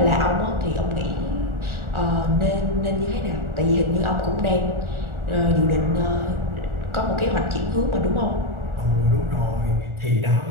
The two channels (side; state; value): left; late; 1.4 ms